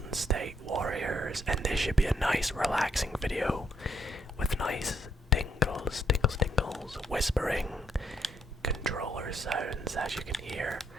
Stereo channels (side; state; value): both; normal; correlation 0.72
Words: State Warriors, and this should be a nice relaxing video with nice tingles, whispering controller sounds, as you can hear.